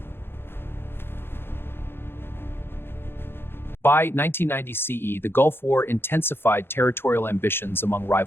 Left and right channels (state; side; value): late; right; 0.11 ms